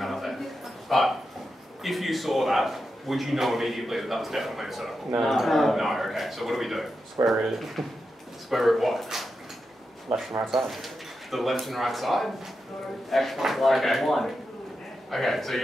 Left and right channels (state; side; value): normal; both; correlation 0.88